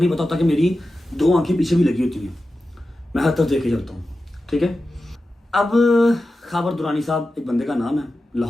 पता होता कि मेरी 2 आंखें पीछे भी लगी होती हैं। मैं हर तरफ देखे चलता हूँ। ठीक है, अब खाबर दुरानी साहब एक बंदे का नाम है,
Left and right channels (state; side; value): normal; both; correlation 0.93